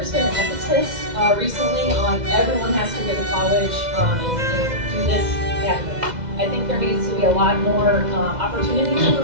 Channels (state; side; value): late; left; 2.0 ms